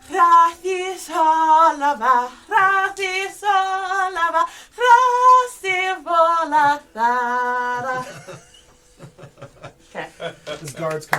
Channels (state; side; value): identical; both; correlation 1.00